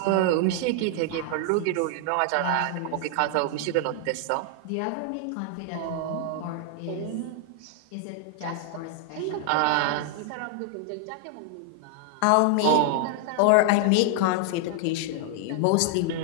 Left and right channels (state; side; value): different; both; correlation 0.00